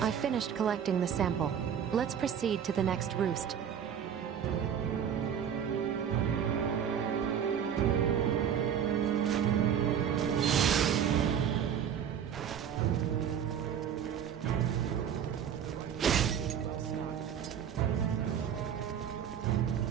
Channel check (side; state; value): left; quieter; 8.5 dB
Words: I finished collecting the sample. Let's proceed to the next roost.